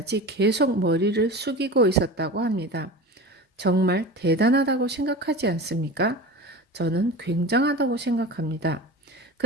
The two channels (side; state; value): both; normal; correlation 0.32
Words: 계속 머리를 숙이고 있었다고 합니다. 정말 대단하다고 생각하지 않습니까? 저는 굉장하다고 생각합니다.